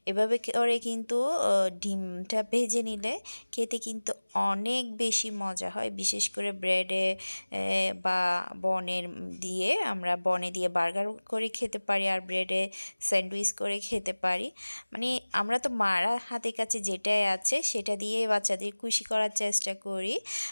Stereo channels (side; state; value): both; inverted; correlation -1.00